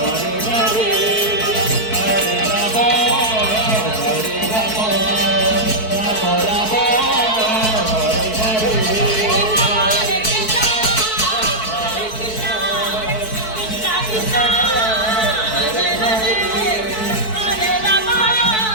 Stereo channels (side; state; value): right; late; 4.6 ms